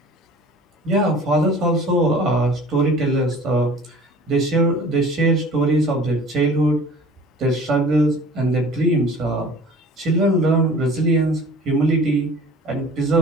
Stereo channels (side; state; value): both; normal; correlation 0.45